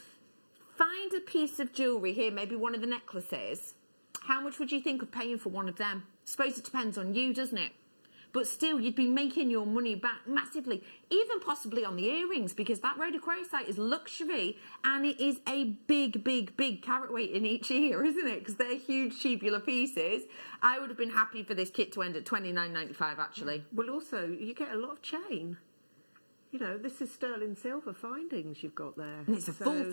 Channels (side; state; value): both; inverted; correlation -1.00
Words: Find a piece of jewellery here, maybe one of the necklaces. How much would you think of paying for one of them? I suppose it depends on you, doesn't it? But still, you'd be making your money back massively, even possibly on the earrings, because that rhodochrosite is luxury and it is a big carat weight in each ear, isn't it? Because they're huge tubular pieces. I would have been happy for this kit to end at $29.95, actually. Well, also, you get a lot of chain. You know, this is sterling silver findings you've got there. And it's a full